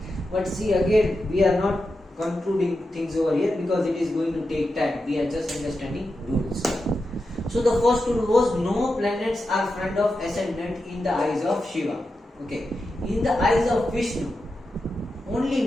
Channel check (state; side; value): normal; both; correlation 0.89